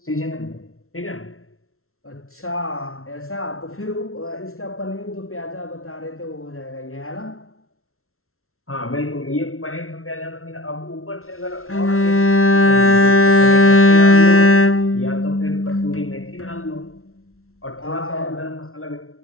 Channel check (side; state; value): right; late; 0.62 ms